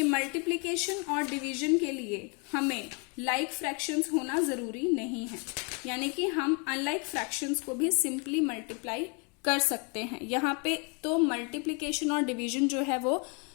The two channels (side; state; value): right; quieter; 34.0 dB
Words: मल्टीप्लीकेशन और डिवीजन के लिए हमें लाइक फ्रैक्शंस होना जरूरी नहीं है, यानी कि हम अनलाइक फ्रैक्शंस को भी सिंपली मल्टीप्लाई कर सकते हैं। यहाँ पे तो मल्टीप्लीकेशन और डिवीजन जो है वो